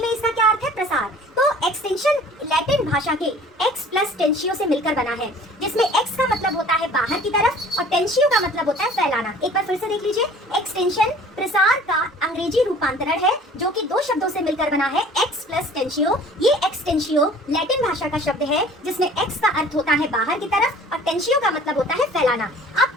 में इसका क्या अर्थ है, प्रसार। तो एक्सटेंशन लैटिन भाषा के एक्स प्लस टेंशियो से मिलकर बना है, जिसमें एक्स का मतलब होता है बाहर की तरफ और टेंशियो का मतलब होता है फैलाना। एक बार फिर से देख लीजिए, एक्सटेंशन प्रसार का अंग्रेजी रूपांतरण है जो कि दो शब्दों से मिलकर बना है, एक्स प्लस टेंशियो। ये एक्सटेंशियो लैटिन भाषा का शब्द है जिसमें एक्स का अर्थ होता है बाहर की तरफ और टेंशियो का मतलब होता है फैलाना।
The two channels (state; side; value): normal; both; correlation 0.49